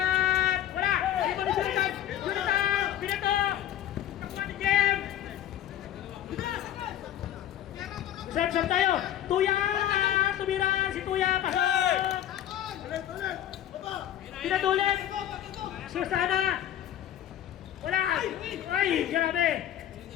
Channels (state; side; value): quieter; right; 11.5 dB